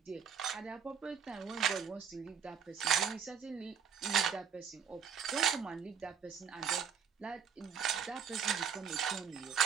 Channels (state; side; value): quieter; left; 7.1 dB